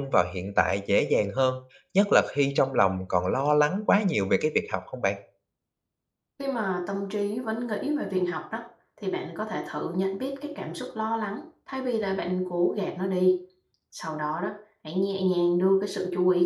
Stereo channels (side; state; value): both; identical; correlation 1.00